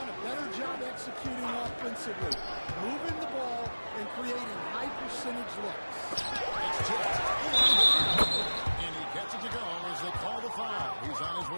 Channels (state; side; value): inverted; both; correlation -1.00